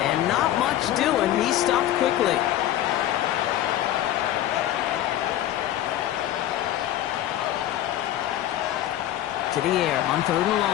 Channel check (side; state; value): right; quieter; 12.8 dB